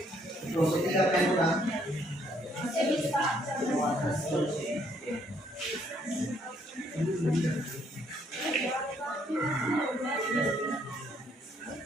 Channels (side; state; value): both; normal; correlation 0.68